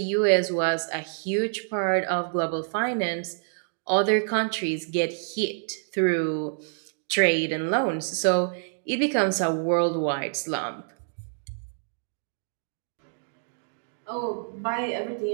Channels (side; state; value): left; silent; digital silence